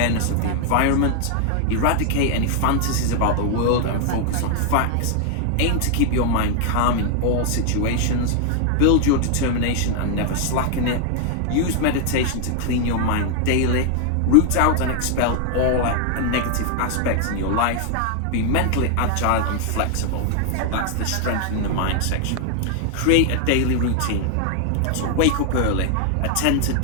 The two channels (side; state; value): both; different; correlation 0.00